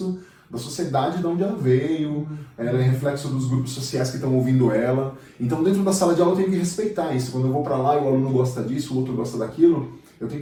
da sociedade de onde ela veio, ela é reflexo dos grupos sociais que estão ouvindo ela. Então, dentro da sala de aula, eu tenho que respeitar isso. Quando eu vou para lá e o aluno gosta disso, o outro gosta daquilo, eu tenho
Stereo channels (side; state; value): both; identical; correlation 1.00